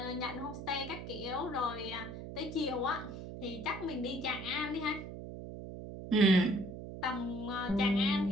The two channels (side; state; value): right; noise; hum, 9 dB below the sound